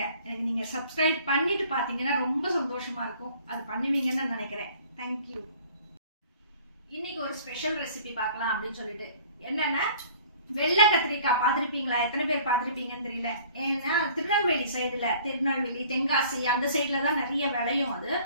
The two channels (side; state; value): both; inverted; correlation -0.51